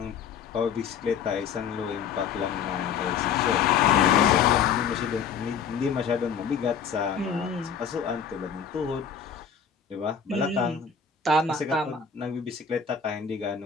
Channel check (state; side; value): quieter; right; 6.9 dB